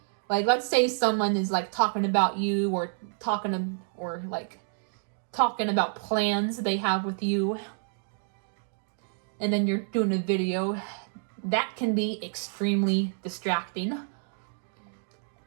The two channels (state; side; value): silent; left; 59 dB below the other